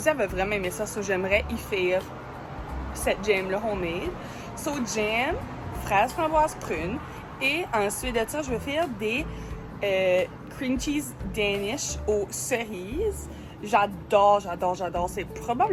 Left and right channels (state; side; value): identical; both; correlation 1.00